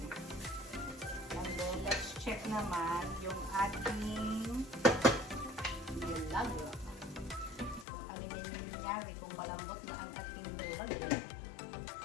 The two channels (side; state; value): right; drops out; at 7.9 s